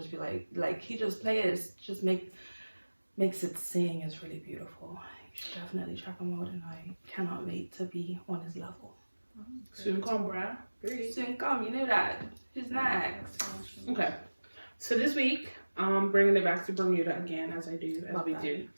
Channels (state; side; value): inverted; both; correlation -1.00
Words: be like he just plays, just makes it sing. Is really beautiful. You should definitely check him out and I cannot wait to be on his level. Soon come, bruh. Soon come, you know that. Who's next? Okay. So this week, bringing it back to Bermuda again, as I do, do.